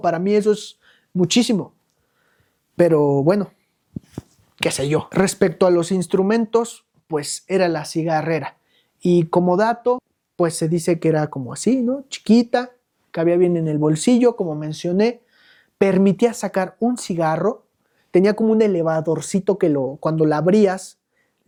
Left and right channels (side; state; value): both; identical; correlation 1.00